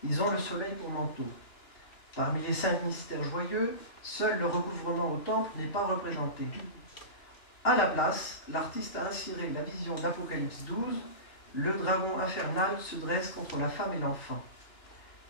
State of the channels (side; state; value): right; late; 2.9 ms